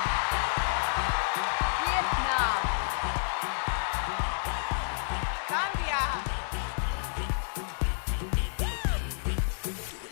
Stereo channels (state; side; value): silent; right; 57 dB below the other